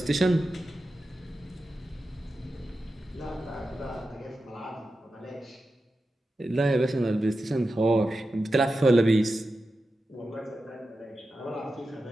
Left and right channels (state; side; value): normal; both; correlation 0.91